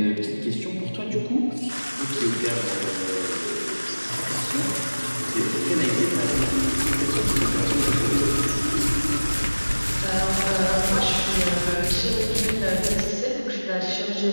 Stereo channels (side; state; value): both; inverted; correlation -1.00